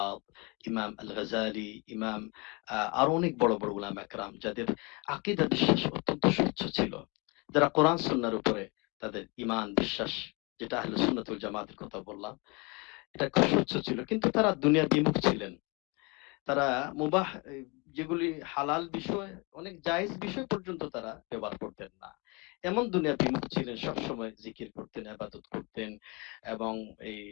ইমাম আল গাজালি, ইমাম আরো অনেক বড় বড় উলামা একরাম যাদের আকীদা বিশ্বাস অত্যন্ত স্বচ্ছ ছিল, যারা কোরআন সুন্নাহর উপরে তাদের ঈমান বিশ্বাস, যেটা আহলে সুন্নাত ওয়াল জামাতের কথা বললাম, এটা খুব স্বচ্ছ ছিল। কিন্তু তারা দুনিয়া বিমুখ ছিলেন। তারা মুবাহ যেগুলি হালাল বিষয়, অনেক জায়েজ বিষয় পর্যন্ত তারা ব্যবহার করতেন না। এমন দুনিয়া বিমুখ ছিলেন, সবসময় জিকির করতেন, ইবাদত করতেন এবং এই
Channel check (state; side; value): quieter; right; 29.0 dB